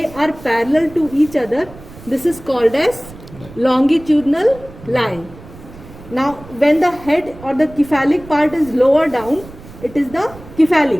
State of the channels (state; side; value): noise; right; rumble, 18 dB below the sound